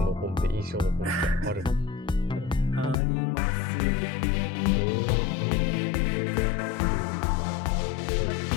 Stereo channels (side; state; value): right; drops out; at 3.0 s